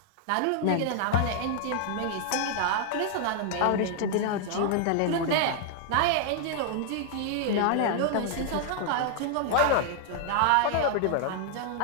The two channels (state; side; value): different; both; correlation 0.00